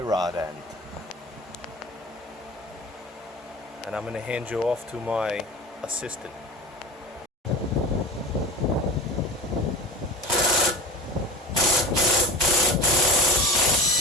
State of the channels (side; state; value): both; normal; correlation 0.31